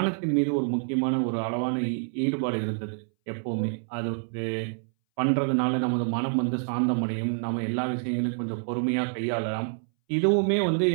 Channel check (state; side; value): silent; left; 60 dB below the other